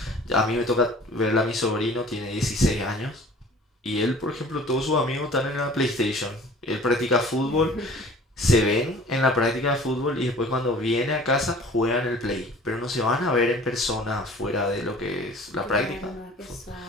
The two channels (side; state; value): both; normal; correlation 0.47